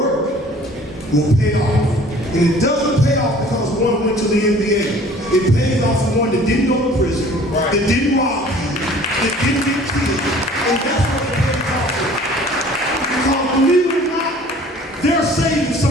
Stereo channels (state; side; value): normal; both; correlation 0.50